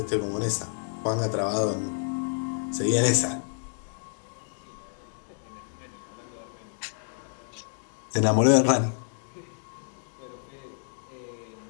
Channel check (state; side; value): silent; right; digital silence